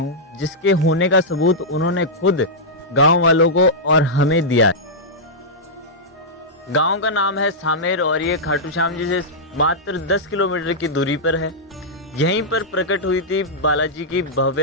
जिसके होने का सबूत उन्होंने खुद गांव वालों को और हमें दिया है। गांव का नाम है सामेर और ये खाटू श्याम जी से मात्र 10 किलोमीटर की दूरी पर है। यहीं पर प्रकट हुई थी बालाजी की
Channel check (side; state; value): both; normal; correlation -0.10